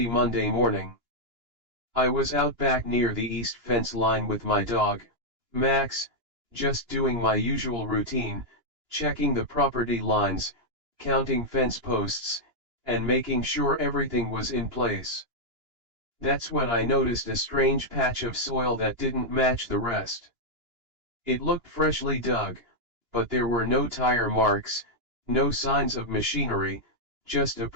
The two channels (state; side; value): late; left; 2.9 ms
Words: Monday morning. I was out back near the east fence line with my dog, Max, just doing my usual routine, checking the property lines, counting fence posts, and making sure everything was in place. That's when I noticed a strange patch of soil that didn't match the rest. It looked freshly dug, but there were no tire marks, no signs of machinery, just a